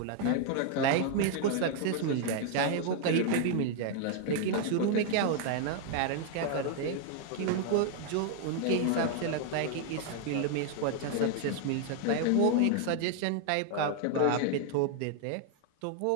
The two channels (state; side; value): different; both; correlation 0.00